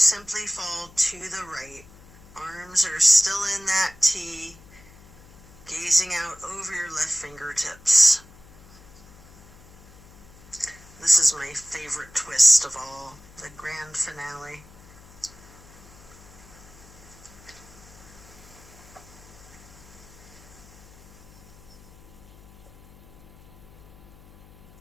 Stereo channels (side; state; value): left; noise; hum, 23 dB below the sound